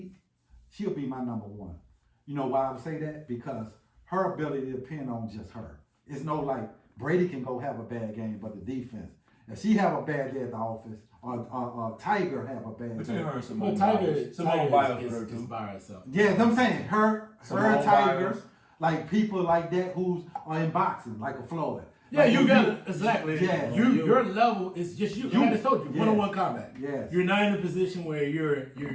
she'll be my number 1. You know why I would say that? Because her ability to depend on just her. It's no like Brady can go have a bad game, but the defense. If she have a bad day at the office, or Tiger have a bad Between day. her and Simone Tiger with her too. is by herself. Yeah, I'm saying her Tiger, Biles. like people like that who's are in boxing, like a Floyd. Yeah, like you got it. Exactly. Yeah. Your level is just you. I just told you, Yes. one-on-one combat. Yes. You're not in a position where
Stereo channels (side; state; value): both; identical; correlation 1.00